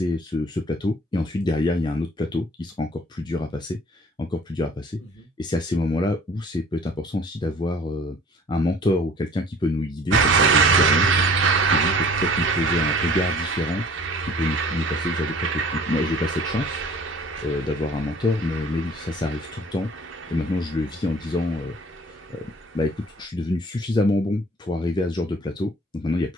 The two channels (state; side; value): normal; both; correlation 0.51